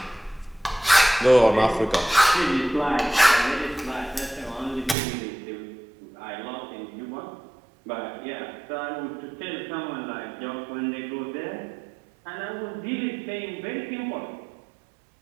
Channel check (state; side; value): drops out; left; at 5.0 s